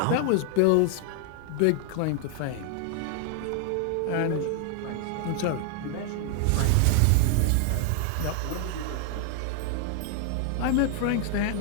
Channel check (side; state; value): both; different; correlation 0.00